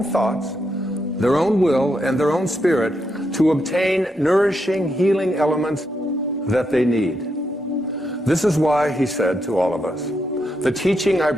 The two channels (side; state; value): both; normal; correlation 0.81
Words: thoughts, their own will, and their own spirit to obtain nourishing, healing elements that they need. This is why he said to all of us, the teaching I